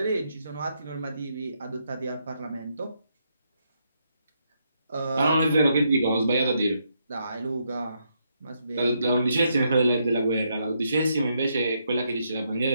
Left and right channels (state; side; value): inverted; both; correlation -0.78